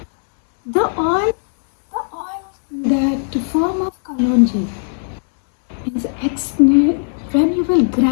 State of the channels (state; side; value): silent; right; digital silence